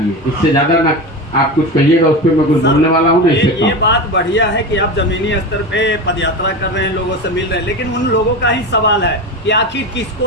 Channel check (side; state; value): both; normal; correlation 0.23